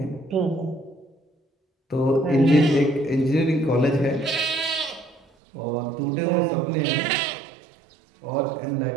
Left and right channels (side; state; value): left; drops out; at 5.2 s